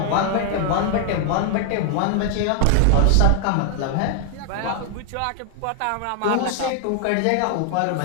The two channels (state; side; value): different; both; correlation 0.00